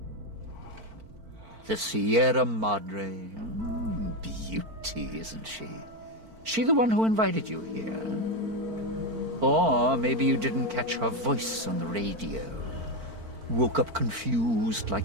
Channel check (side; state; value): left; late; 4.5 ms